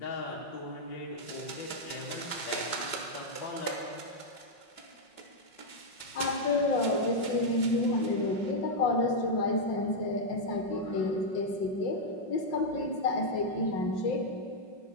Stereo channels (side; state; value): right; late; 5.5 ms